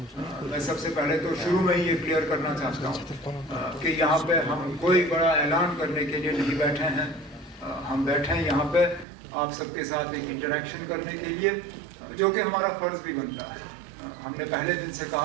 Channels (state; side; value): drops out; left; at 9.1 s